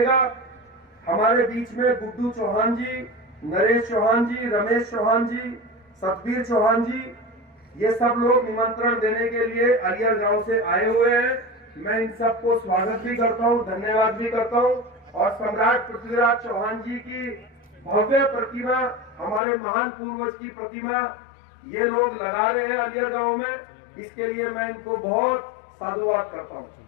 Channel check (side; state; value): right; drops out; at 19.4 s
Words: हमारे बीच में गुड्डू चौहान जी, नरेश चौहान जी, रमेश चौहान जी, सतबीर चौहान जी, ये सब लोग निमंत्रण देने के लिए आलियर गांव से आए हुए हैं। मैं इन सबको स्वागत भी करता हूं, धन्यवाद भी करता हूं। और सम्राट पृथ्वीराज चौहान जी की भव्य प्रतिमा, हमारे महान पूर्वज की प्रतिमा ये लोग लगा रहे हैं आलियर गांव में, इसके लिए मैं इनको बहुत साधुवाद करता हूं।